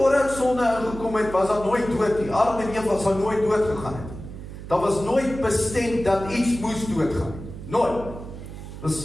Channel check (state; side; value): noise; right; hum, 12 dB below the sound